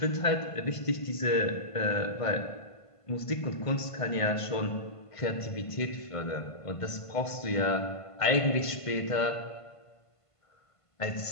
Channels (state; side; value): late; right; 1.5 ms